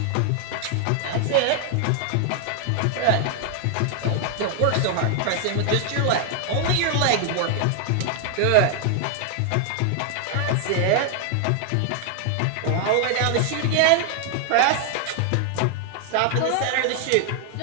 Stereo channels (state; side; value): different; both; correlation 0.00